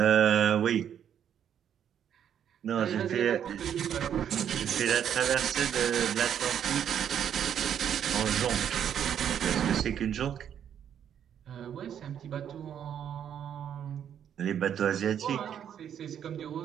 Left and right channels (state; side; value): quieter; left; 9.1 dB